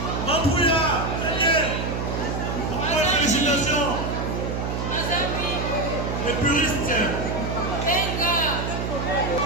Mambouya. Félicitations. Les puristes.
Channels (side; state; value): right; noise; hum, 2 dB below the sound